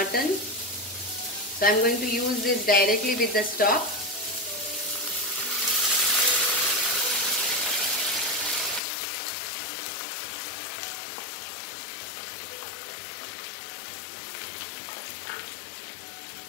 So I am going to use this directly with the stock.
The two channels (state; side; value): drops out; right; at 8.8 s